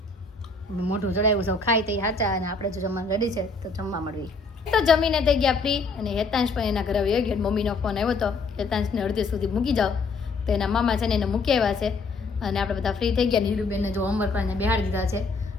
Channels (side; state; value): right; quieter; 4.0 dB